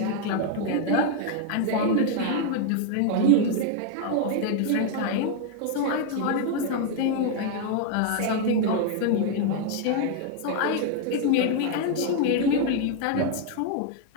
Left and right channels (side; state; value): both; different; correlation 0.00